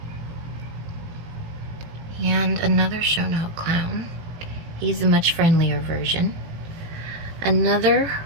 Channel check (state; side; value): late; left; 18 ms